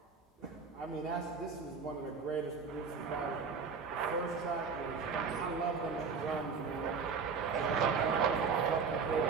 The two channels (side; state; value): left; quieter; 5.3 dB